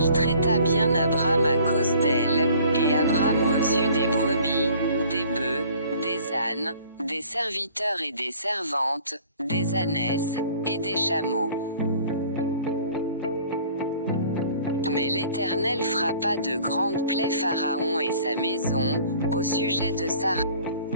traita bien Abram à cause d'elle, et Abram reçut des brebis, des bœufs, des ânes, des serviteurs et des servantes, des ânesses, et des chameaux. Mais l'Éternel frappa de grandes plaies Pharaon et sa maison, au sujet de Sarah.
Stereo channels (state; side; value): inverted; both; correlation -0.52